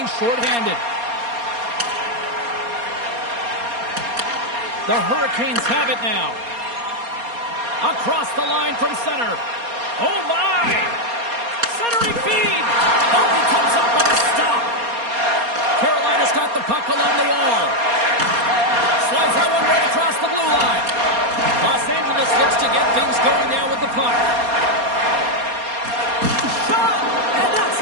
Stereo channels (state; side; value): late; left; 4.2 ms